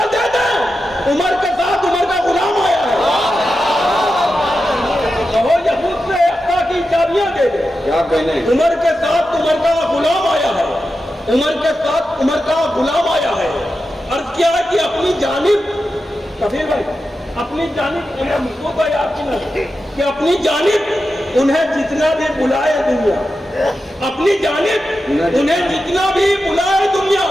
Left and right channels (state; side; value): normal; both; correlation 0.90